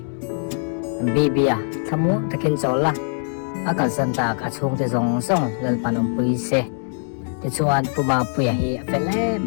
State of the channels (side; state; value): right; silent; 64 dB below the other